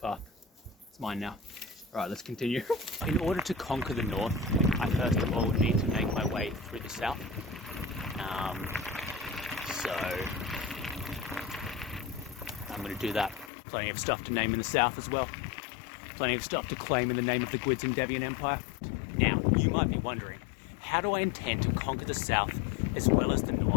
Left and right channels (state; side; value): drops out; right; at 13.5 s